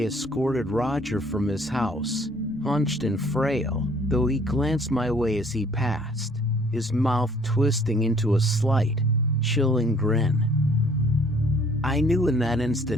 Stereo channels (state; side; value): normal; both; correlation 0.58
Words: escorted Roger from his house, hunched and frail, though he glanced my way as he passed, his mouth twisting into a slight, chilling grin. I knew in that